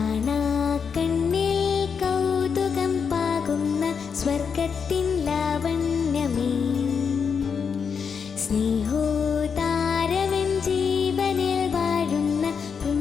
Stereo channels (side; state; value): right; quieter; 6.3 dB